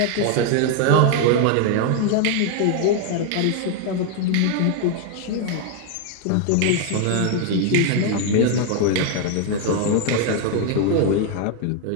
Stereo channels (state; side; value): different; both; correlation 0.00